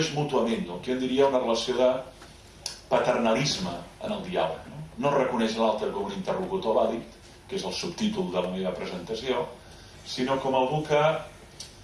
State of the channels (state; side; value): identical; both; correlation 1.00